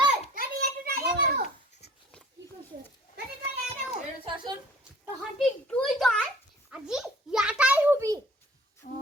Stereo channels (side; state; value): both; normal; correlation 0.50